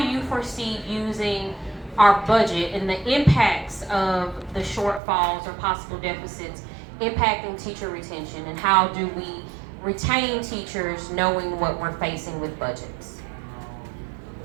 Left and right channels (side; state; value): left; drops out; at 5.0 s